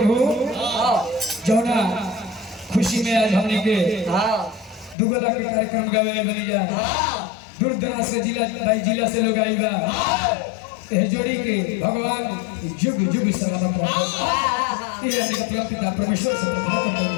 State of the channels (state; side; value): drops out; right; at 5.0 s